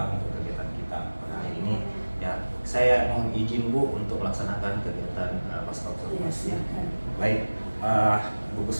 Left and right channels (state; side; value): inverted; both; correlation -1.00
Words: untuk kegiatan kita pada hari ini. Ya, saya mohon izin Bu untuk melaksanakan kegiatan pasca observasi. Baik, Bu